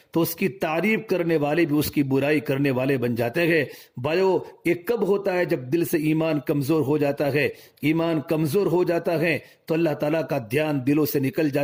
تو اس کی تعریف کرنے والے بھی اس کی برائی کرنے والے بن جاتے ہیں۔ بھائیو، یہ کب ہوتا ہے؟ جب دل سے ایمان کمزور ہو جاتا ہے۔ ایمان کمزور ہو جاتا ہے تو اللہ تعالیٰ کا دھیان دلوں سے نکل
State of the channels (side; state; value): both; identical; correlation 1.00